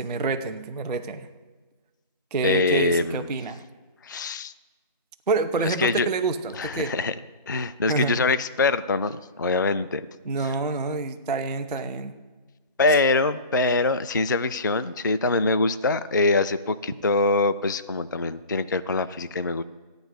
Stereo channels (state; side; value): inverted; both; correlation -0.31